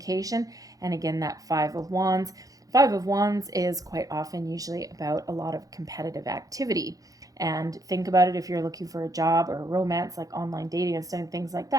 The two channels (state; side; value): late; left; 0.17 ms